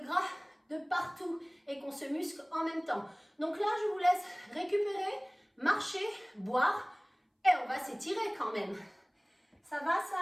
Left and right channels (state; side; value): identical; both; correlation 1.00